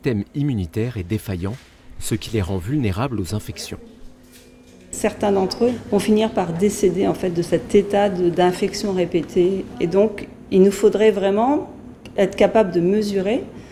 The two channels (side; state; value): both; identical; correlation 1.00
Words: immunitaire, est défaillant, ce qui les rend vulnérables aux infections. Certains d'entre eux vont finir par décéder de cet état d'infection répétée. Et donc, il nous faudrait vraiment être capable de mesurer